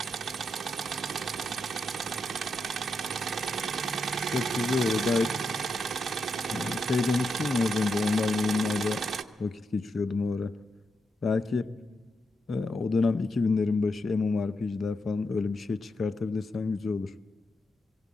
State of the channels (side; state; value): both; normal; correlation 0.84